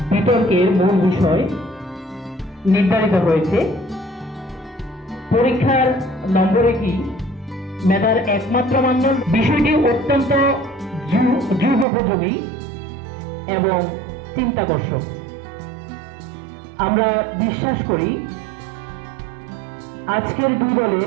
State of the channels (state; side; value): drops out; left; at 11.9 s